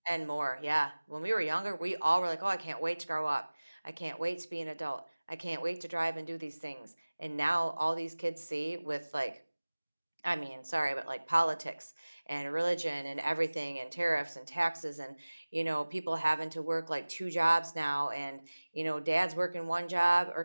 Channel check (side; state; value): both; inverted; correlation -1.00